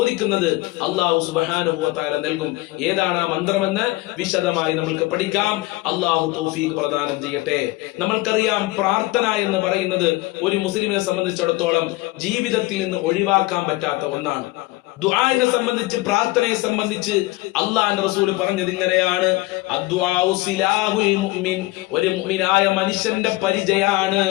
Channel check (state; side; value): quieter; right; 20.5 dB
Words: അള്ളാഹു സുബ്ഹാനഹു വ തആല നൽകും. ഏതാണ് ആ മന്ത്രമെന്ന് വിശദമായി നമ്മൾക്ക് പഠിക്കാം. അള്ളാഹു തൗഫീഖ് പ്രദാനം ചെയ്യട്ടെ. നമ്മൾക്കറിയാം, പ്രാർത്ഥന എന്ന് പറയുന്നത് ഒരു മുസ്ലിമിനെ സംബന്ധിച്ചിടത്തോളം ജീവിതത്തിൽ നിന്ന് ഒഴിവാക്കാൻ പറ്റാത്ത ഒന്നാണ്. ദുആനെ സംബന്ധിച്ച്, പ്രാർത്ഥനയെ സംബന്ധിച്ച് അല്ലാഹുവിന്റെ റസൂൽ പറഞ്ഞത് ഇങ്ങനെയാണ്: അദ്ദുആഉ സിലാഹുൽ മുഅ്മിൻ. ഒരു മുഅ്മിനായ മനുഷ്യന്റെ പരിചയാണ്